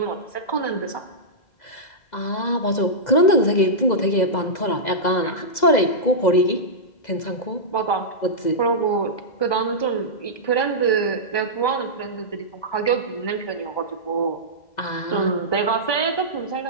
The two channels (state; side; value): late; right; 2.0 ms